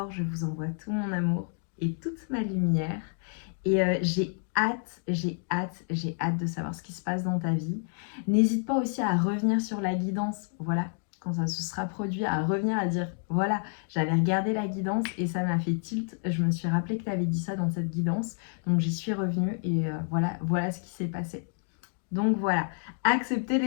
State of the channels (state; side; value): silent; right; 58 dB below the other